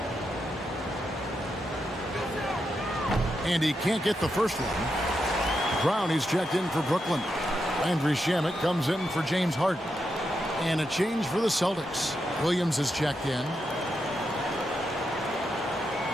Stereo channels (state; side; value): normal; both; correlation 0.85